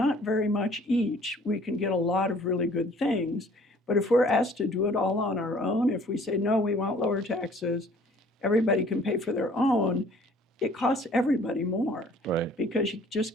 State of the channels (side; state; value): both; normal; correlation 0.54